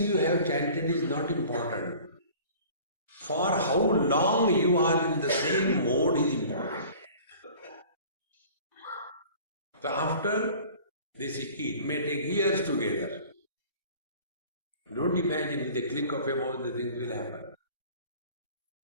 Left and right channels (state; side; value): inverted; both; correlation -0.46